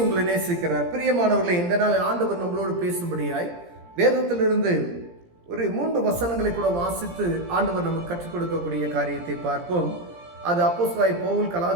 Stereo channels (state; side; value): late; left; 17 ms